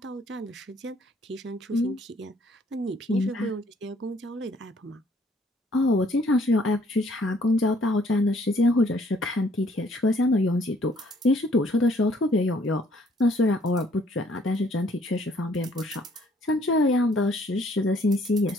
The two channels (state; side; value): normal; both; correlation 0.63